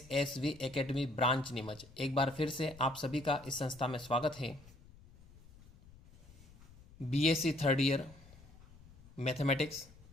Academy branch Neemuch. एक बार फिर से आप सभी का इस संस्था में स्वागत है. BSc third year mathematics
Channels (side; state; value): left; noise; rumble, 22 dB below the sound